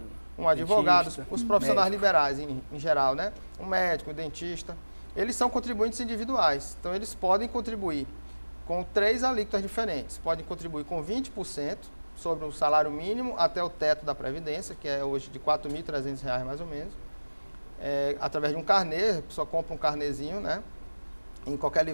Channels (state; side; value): inverted; both; correlation -1.00